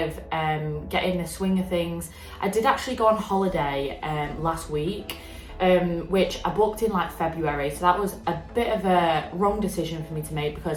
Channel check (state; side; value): identical; both; correlation 1.00